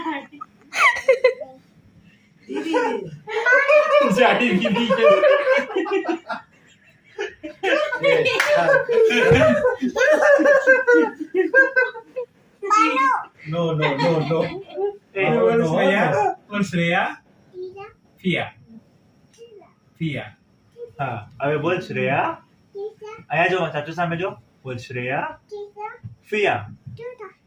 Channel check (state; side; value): identical; both; correlation 1.00